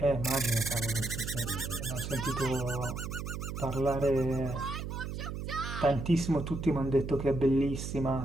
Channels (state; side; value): noise; right; hum, 5 dB below the sound